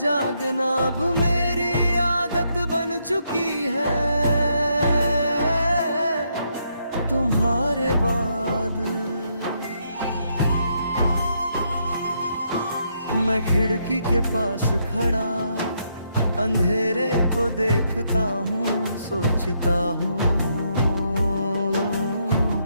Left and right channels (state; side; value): inverted; both; correlation -0.76